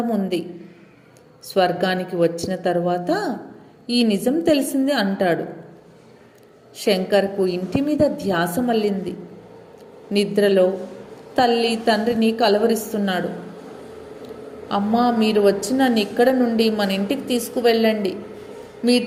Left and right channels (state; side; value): identical; both; correlation 1.00